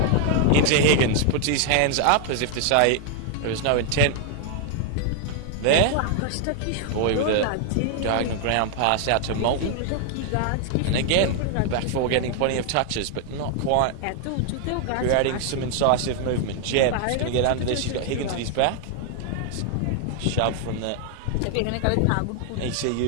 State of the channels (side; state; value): both; different; correlation 0.00